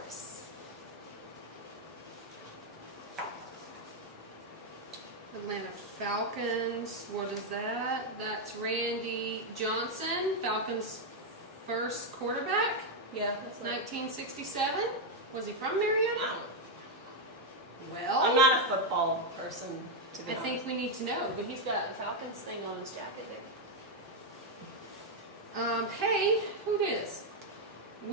Atlanta Falcons, what is that? That's Randy Johnson, Falcons' first quarterback, Yeah, that's 1967. Was he from Marietta? Well, I'm not a football person, to be I honest. think we need to know. But he's got a Falcons thing on his jacket. Hey, who this?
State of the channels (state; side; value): normal; both; correlation 0.02